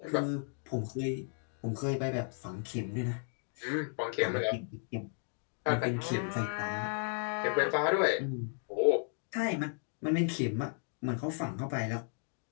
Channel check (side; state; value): right; silent; 55 dB below the other